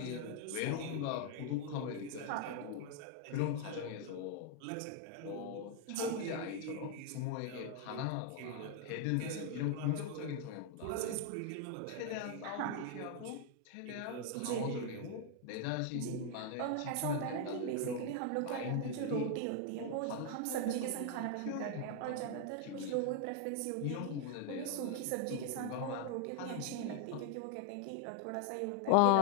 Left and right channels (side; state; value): both; different; correlation 0.00